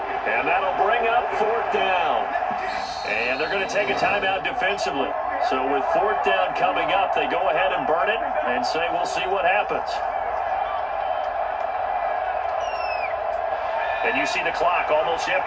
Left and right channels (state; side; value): identical; both; correlation 1.00